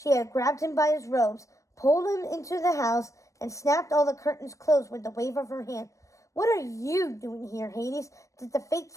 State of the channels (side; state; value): right; late; 0.15 ms